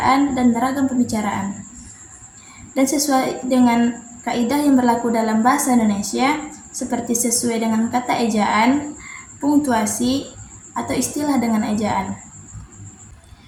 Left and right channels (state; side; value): identical; both; correlation 1.00